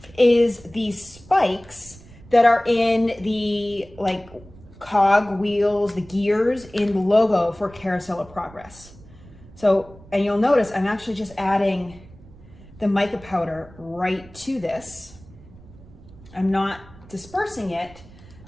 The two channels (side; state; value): right; noise; rumble, 21 dB below the sound